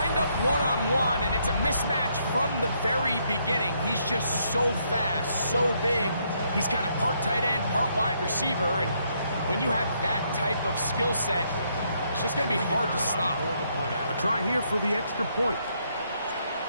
up one-on-one, and it's a mismatch from the very beginning. He's just so fast, so big. He's kind of part tight end, part wide receiver, and when you have that type of skill set, it's just going to be hard to stop. A try here for the extra point.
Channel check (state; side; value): inverted; both; correlation -0.73